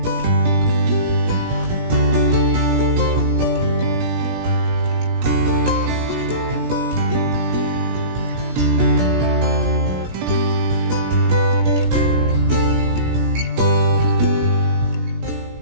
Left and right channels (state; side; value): late; left; 17 ms